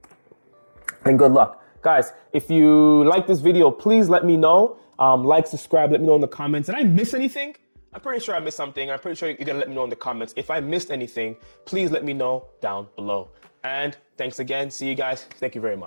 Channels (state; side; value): inverted; both; correlation -1.00